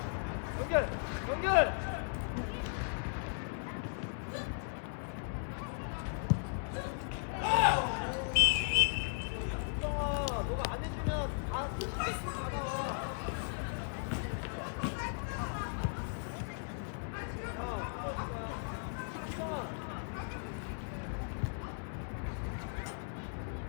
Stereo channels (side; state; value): right; silent; 53 dB below the other